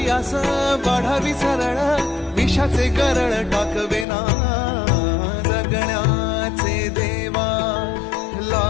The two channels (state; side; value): drops out; right; at 4.0 s